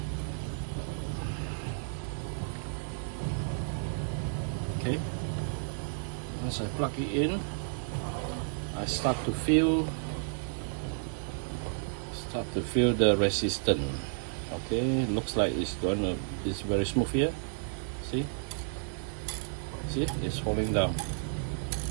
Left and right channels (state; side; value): silent; left; digital silence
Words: Okay. Once I plug it in, I start to feel the resistance. Okay, looks like it's very smooth here. See, it's falling down.